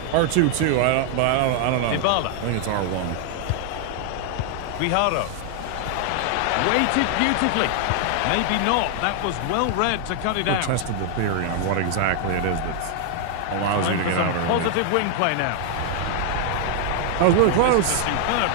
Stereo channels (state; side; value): different; both; correlation 0.00